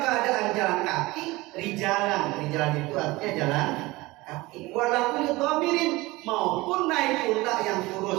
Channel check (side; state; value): left; quieter; 21.1 dB